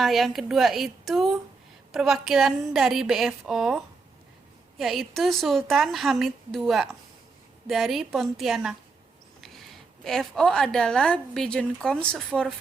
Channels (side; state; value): left; quieter; 4.3 dB